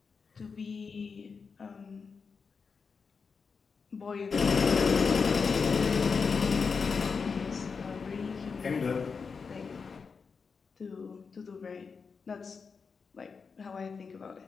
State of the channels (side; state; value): right; quieter; 5.3 dB